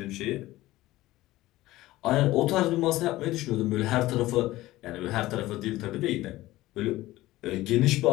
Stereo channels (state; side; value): quieter; right; 17.1 dB